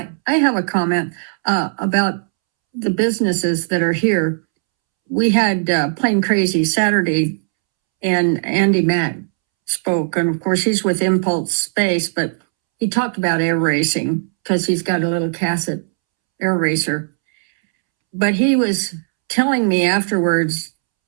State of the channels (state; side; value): silent; left; 68 dB below the other